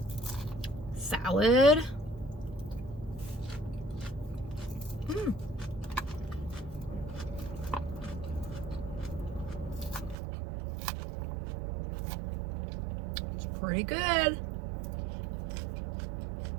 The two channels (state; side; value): drops out; left; at 10.2 s